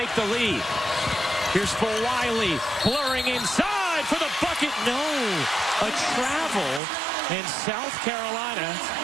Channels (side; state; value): left; drops out; at 6.8 s